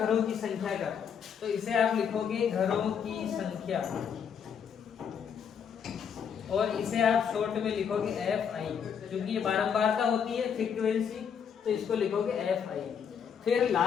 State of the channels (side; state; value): right; quieter; 7.4 dB